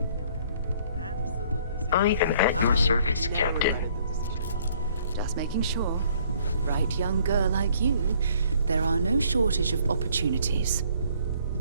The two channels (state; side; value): inverted; both; correlation -0.61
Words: Noel. Absolutely. I am at your service, Captain. Just making sure. Right young girl like you, there are no shortage of opportunities.